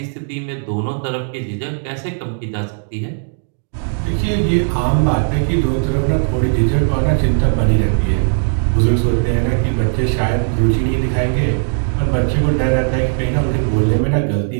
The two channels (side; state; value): left; silent; digital silence